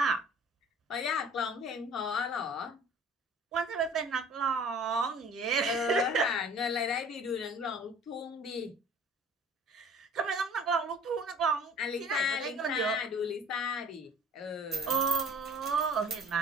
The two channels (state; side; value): normal; both; correlation 0.48